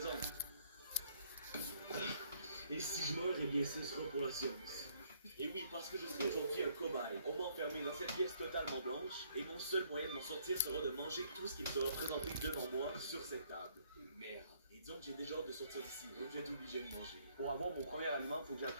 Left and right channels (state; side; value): inverted; both; correlation -0.66